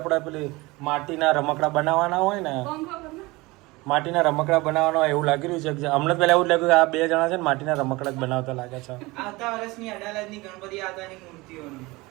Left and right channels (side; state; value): left; quieter; 22.4 dB